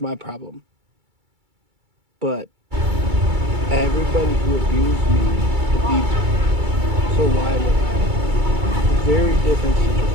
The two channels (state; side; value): late; left; 2.3 ms